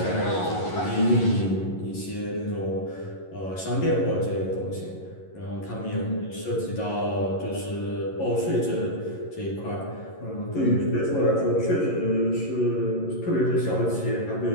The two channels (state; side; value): late; right; 11 ms